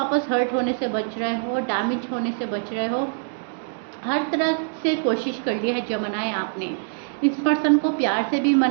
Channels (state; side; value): silent; left; digital silence